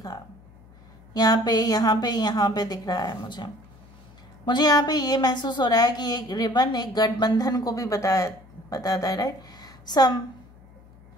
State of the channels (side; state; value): left; noise; hum, 24 dB below the sound